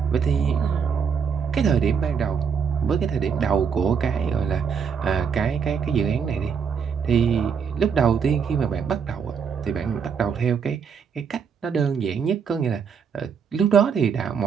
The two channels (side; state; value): left; quieter; 6.5 dB